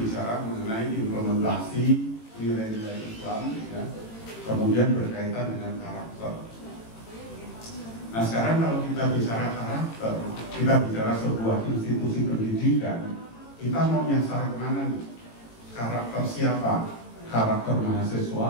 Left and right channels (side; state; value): right; late; 18 ms